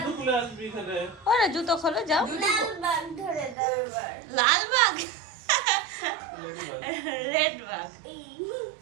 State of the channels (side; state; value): left; drops out; at 3.6 s